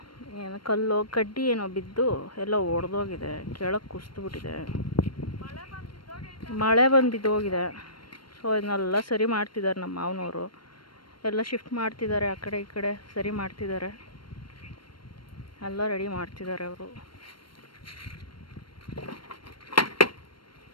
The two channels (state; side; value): late; right; 0.72 ms